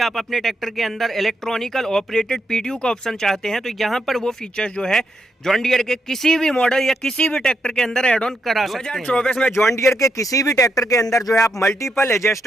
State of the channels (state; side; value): normal; both; correlation 0.81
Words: अपने ट्रैक्टर के अंदर इलेक्ट्रॉनिकल ऑपरेटेड पीटीयू का ऑप्शन चाहते हैं, तो यहाँ पर वो फीचर्स जो है जॉन डियर के किसी भी मॉडल या किसी भी ट्रैक्टर के अंदर एड ऑन करा सकते हैं। 2024 में जॉन डियर के किसी भी ट्रैक्टर के अंदर जो है आप मल्टीपल